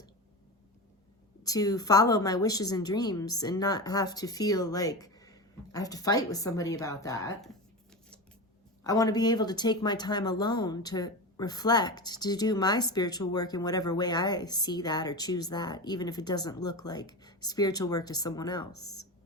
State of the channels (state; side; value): normal; both; correlation 0.23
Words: to follow my wishes and dreams and not have to feel like I have to fight with somebody about that. I want to be able to take my time alone to reflect, to do my spiritual work in whatever way I see that or choose that, even if it doesn't look like spiritual work to someone else.